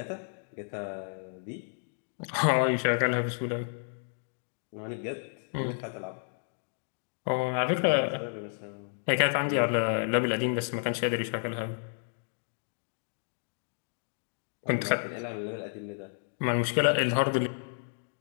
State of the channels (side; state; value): right; silent; digital silence